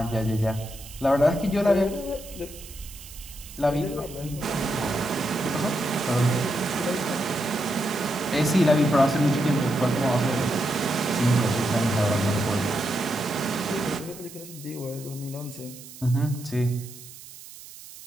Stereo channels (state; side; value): noise; right; hiss, 16 dB below the sound